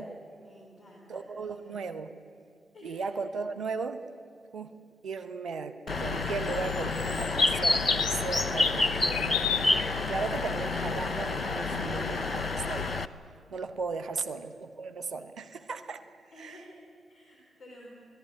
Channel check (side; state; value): both; normal; correlation 0.73